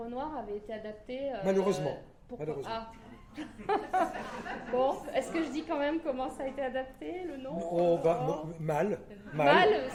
Noir avait été adapté... Malheureusement. Bon, est-ce que je dis quand même comment ça a été adapté, le nom? Mal,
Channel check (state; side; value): identical; both; correlation 1.00